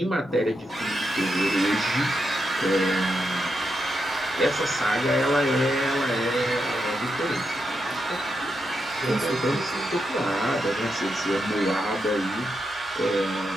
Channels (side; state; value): both; normal; correlation 0.84